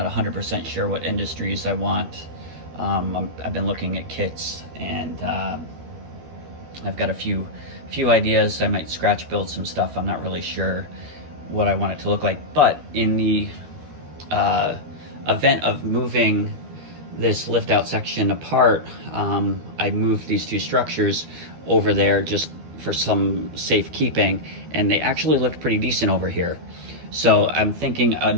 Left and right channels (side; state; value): left; late; 13 ms